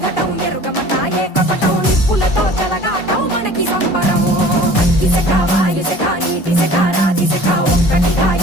ఘటం ఎరుగమట ఏ కపటం నిప్పులతో చెలగాటం మనకి సంబరం అగ్గిసెక వాయుసెక నీటిసెక రాతిసెక ఒక్కటిగా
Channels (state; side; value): late; right; 2.5 ms